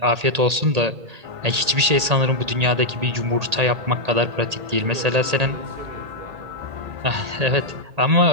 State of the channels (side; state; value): left; late; 1.8 ms